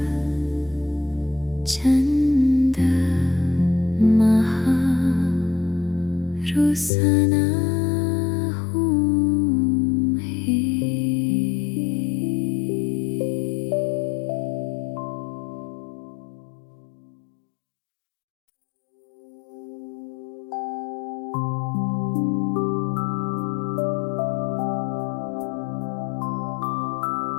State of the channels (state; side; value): drops out; right; at 6.9 s